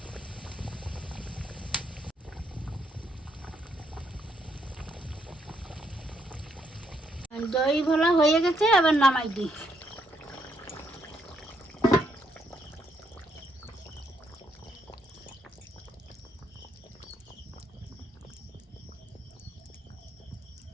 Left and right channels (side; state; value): both; normal; correlation 0.74